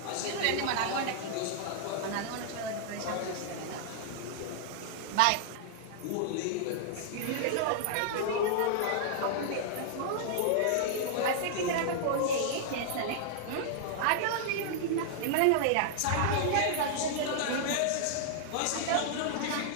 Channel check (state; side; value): different; both; correlation -0.01